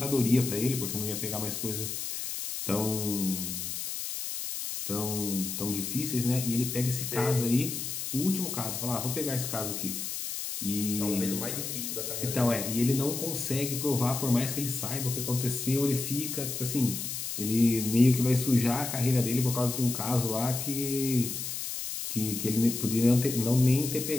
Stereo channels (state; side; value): noise; left; hiss, 5 dB below the sound